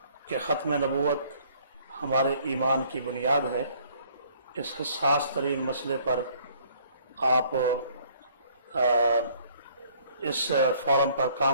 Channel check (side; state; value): both; inverted; correlation -0.60